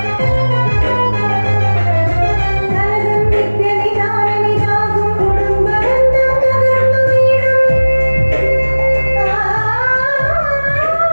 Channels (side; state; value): both; inverted; correlation -1.00